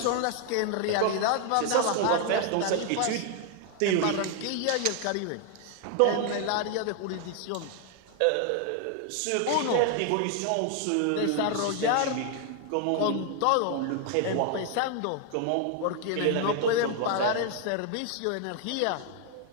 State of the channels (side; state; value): both; different; correlation 0.00